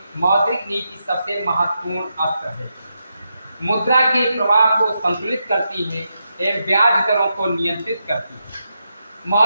मौद्रिक नीति सबसे महत्वपूर्ण अस्त्र है। मुद्रा के प्रवाह को संतुलित करती है एवं ब्याज दरों को नियंत्रित करती है।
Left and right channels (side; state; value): both; inverted; correlation -0.85